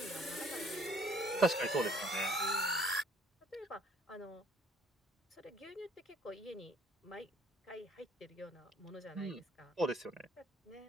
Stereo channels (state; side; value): normal; both; correlation 0.60